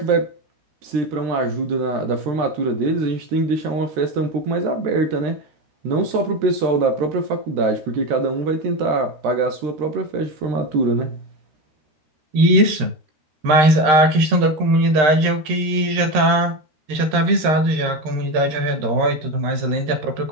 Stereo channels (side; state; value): left; late; 13 ms